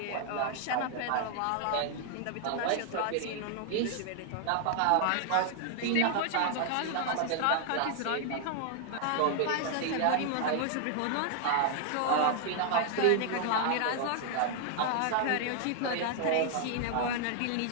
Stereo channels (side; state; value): both; different; correlation 0.00